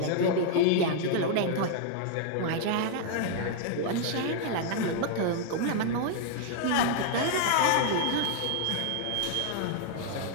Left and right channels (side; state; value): both; different; correlation 0.00